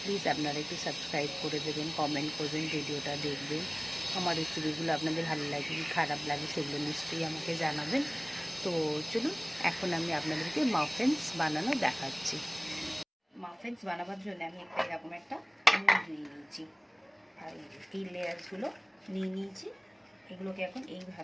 প্লিজ আপনারা একটু সাবস্ক্রাইব করে দেবেন, কমেন্ট করবেন, ভিডিওটা দেখবেন। আমার রেসিপিগুলো আপনাদের ভালো লাগে কি খারাপ লাগে সেগুলো নিশ্চয়ই আমাকে জানাবেন। তো চলুন, এখন আমি আপনাদেরকে মাফিনস বানানো দেখাচ্ছি। মাফিনস বানাবার জন্য আমি এরকম একটা মোল্ড নিয়ে নিয়েছি, আর এই লেয়ারসগুলো নিয়ে নিয়েছি। এগুলোকে এখন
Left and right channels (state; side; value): identical; both; correlation 1.00